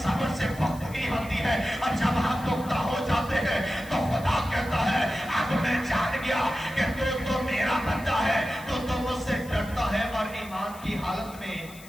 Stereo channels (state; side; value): noise; left; hiss, 20 dB below the sound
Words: صبر سے پختگی ہوتی ہے. اور جب ہم پختہ ہو جاتے ہیں تو خدا کہتا ہے اب میں جان گیا کہ تو میرا بندہ ہے، تو مجھ سے ڈرتا ہے. اور ایمان کی حالت میں